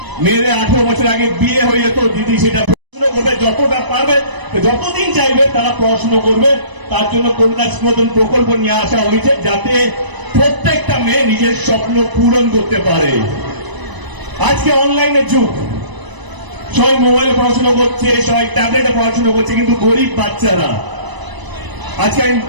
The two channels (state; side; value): late; left; 1.0 ms